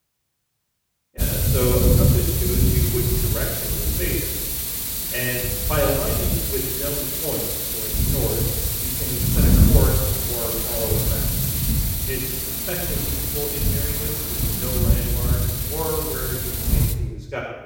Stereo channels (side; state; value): both; identical; correlation 1.00